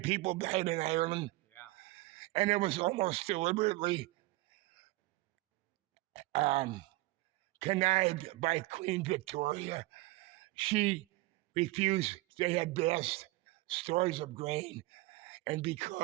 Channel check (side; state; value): left; quieter; 21.0 dB